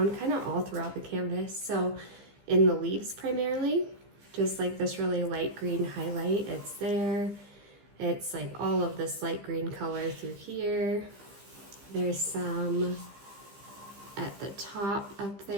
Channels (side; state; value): left; late; 15 ms